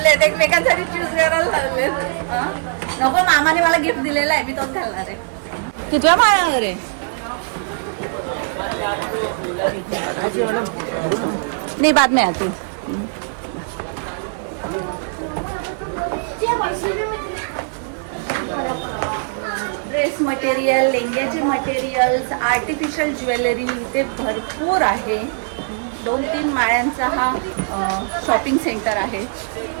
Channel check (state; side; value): silent; left; digital silence